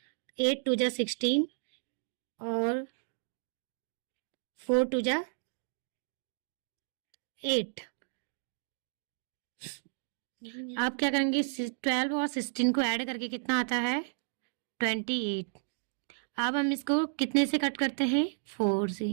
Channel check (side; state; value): left; silent; digital silence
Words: 8 2 जा 16 और 4 2 जा 8। आप क्या करेंगे, 12 और 16 को ऐड करके कितना आता है 28। अब हम इसको कितने से कट करते हैं, 4 से।